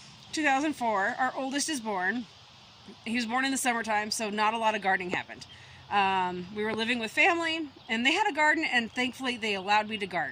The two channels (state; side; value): identical; both; correlation 1.00